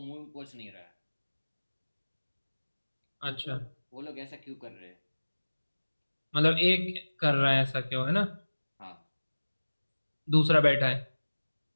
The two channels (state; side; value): inverted; both; correlation -1.00